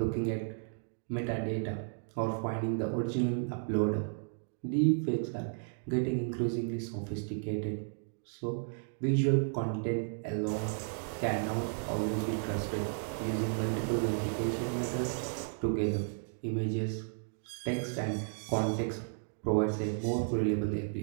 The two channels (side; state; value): left; silent; digital silence